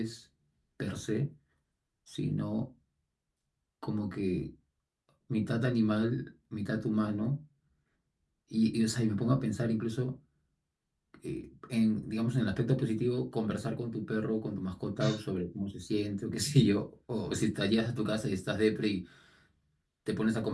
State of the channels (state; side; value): identical; both; correlation 1.00